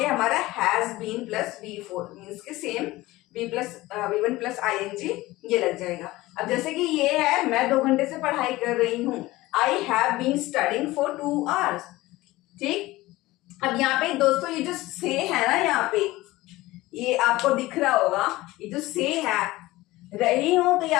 हमारा has been plus V4 means के सेम V1 प्लस ING ये लग जाएगा। अब जैसे कि ये है मैं 2 घंटे से पढ़ाई कर रही हूँ, I have been studying for 2 hours। ठीक। अब यहाँ पे दोस्तों ये जो से है ना, यहाँ पे ये आपको दिख रहा होगा, ये जो से है रही हूं तो ये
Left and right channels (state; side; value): quieter; right; 18.7 dB